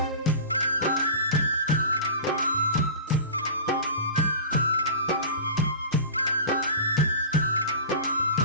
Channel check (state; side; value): inverted; both; correlation -0.35